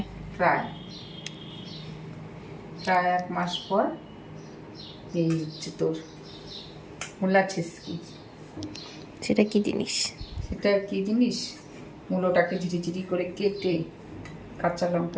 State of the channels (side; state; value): both; identical; correlation 1.00